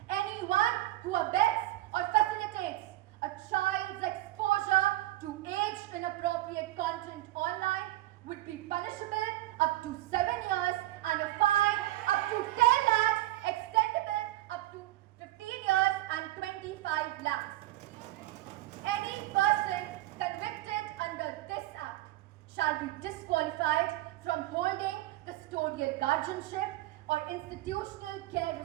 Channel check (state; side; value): quieter; left; 16.6 dB